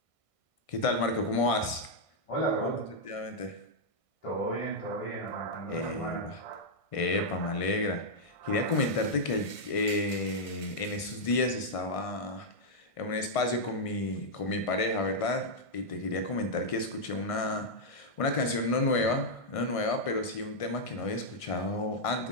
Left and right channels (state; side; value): late; right; 1.6 ms